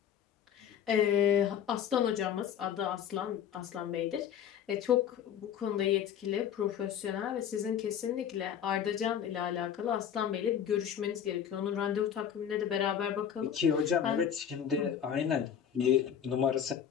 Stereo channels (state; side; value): quieter; right; 8.9 dB